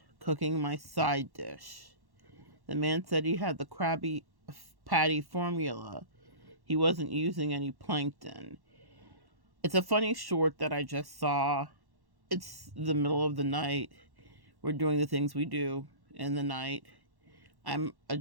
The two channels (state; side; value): late; left; 1.1 ms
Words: cooking my side dish. The man said he had the Krabby Patty formula. He wasn't using any plankton. It's a funny short that I just saw. It's the middle of the night. We're doing the things we do in the night. I'm